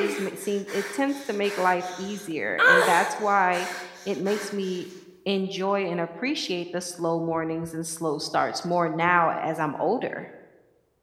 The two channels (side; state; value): both; identical; correlation 1.00